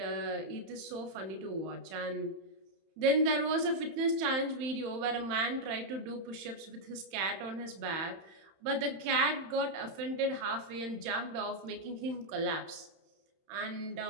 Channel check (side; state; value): left; late; 31 ms